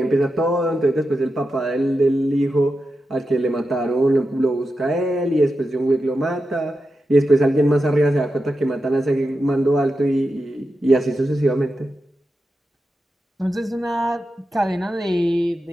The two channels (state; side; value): normal; both; correlation 0.90